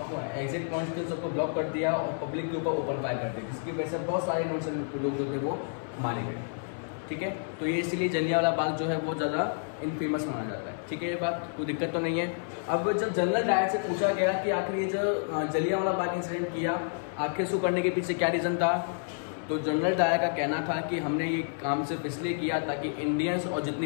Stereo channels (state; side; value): silent; right; 58 dB below the other